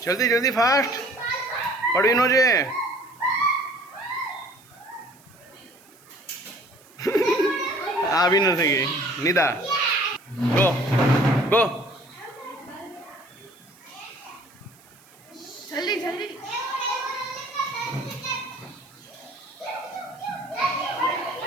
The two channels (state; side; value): noise; right; hiss, 27 dB below the sound